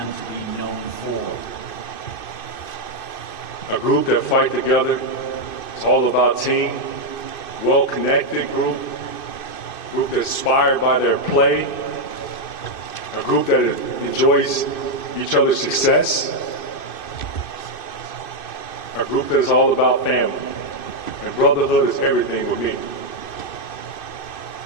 to be known for? A group that fight together. It's all about team. Well-connected group that's inspired by their play. A group that enjoys each other's success. A group that is all about family. And brotherhood is everything with me.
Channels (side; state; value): right; late; 2.6 ms